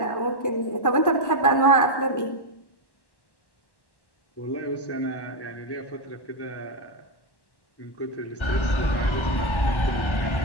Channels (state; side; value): late; right; 1.1 ms